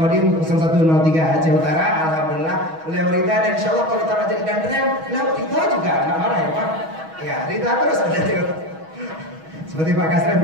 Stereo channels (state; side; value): late; left; 6.2 ms